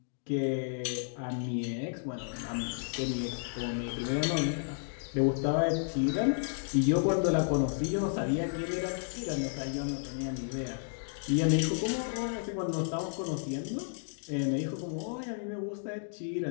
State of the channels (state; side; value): silent; right; digital silence